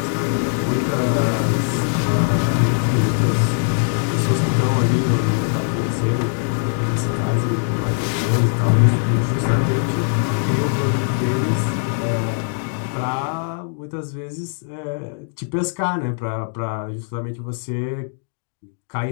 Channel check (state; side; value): silent; right; digital silence